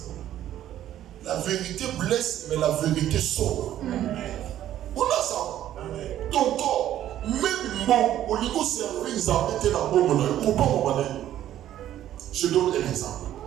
La vérité blesse, mais la vérité sauve. On a ça. Ton corps, même bon, au niveau servir, ils ont été la bonne monnaie. Je donne un exemple.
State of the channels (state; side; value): quieter; left; 12.1 dB